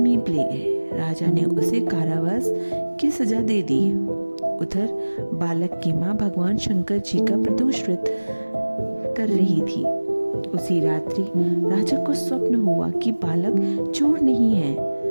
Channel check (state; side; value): inverted; both; correlation -1.00